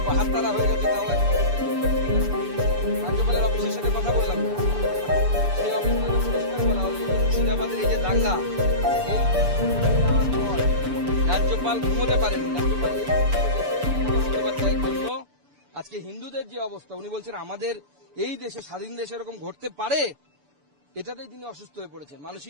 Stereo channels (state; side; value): late; left; 6.9 ms